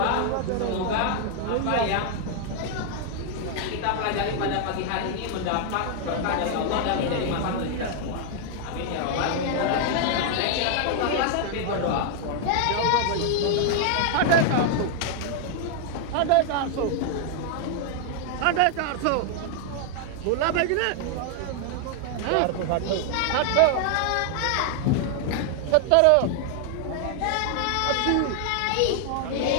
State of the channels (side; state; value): both; different; correlation 0.00